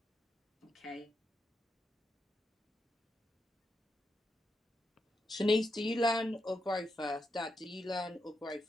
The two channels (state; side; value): normal; both; correlation 0.84